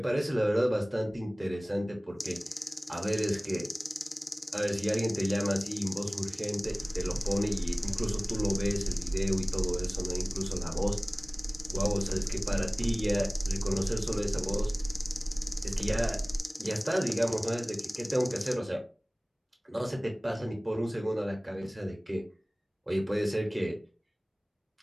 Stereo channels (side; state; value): both; normal; correlation 0.98